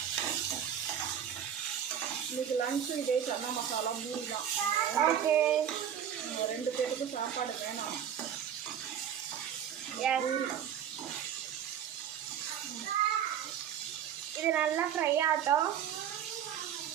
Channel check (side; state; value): left; quieter; 9.0 dB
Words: இன்னைக்கு லன்ச்சு இதே சன்னா மசாலா பூரி தான். ஓகே, 2 பேருக்கு சாப்பாடு வேணாம். பூரி இது நல்லா ஃப்ரை ஆகட்டும்.